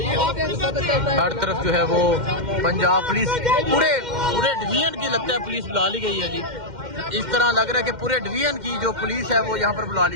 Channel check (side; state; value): left; late; 2.1 ms